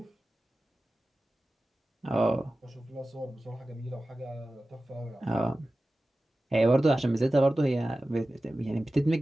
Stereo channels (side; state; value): both; normal; correlation 0.95